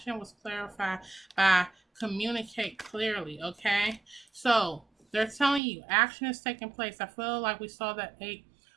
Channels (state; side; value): drops out; left; at 5.6 s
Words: was clarified by communicate clearly. Okay, so they're telling you action is taking place. I feel like we saw that 8